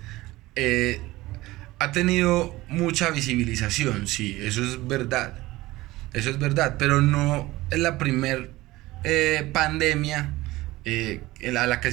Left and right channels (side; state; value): left; quieter; 18.7 dB